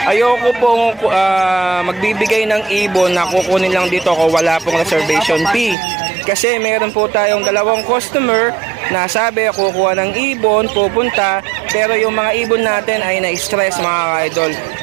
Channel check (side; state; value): left; drops out; at 5.8 s